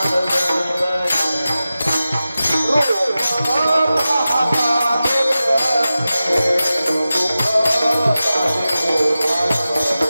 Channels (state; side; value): inverted; both; correlation -0.94